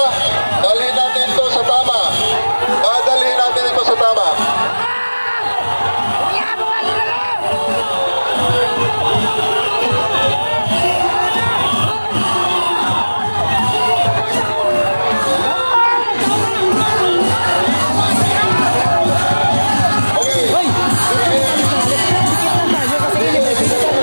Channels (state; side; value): inverted; both; correlation -1.00